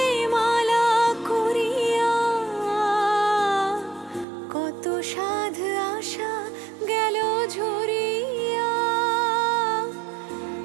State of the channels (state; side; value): drops out; left; at 4.2 s